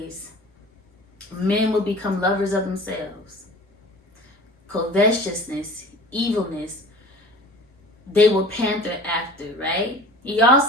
men will become lovers of themselves. Covetousness, evilness, they will panther after, right? He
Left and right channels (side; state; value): both; normal; correlation 0.42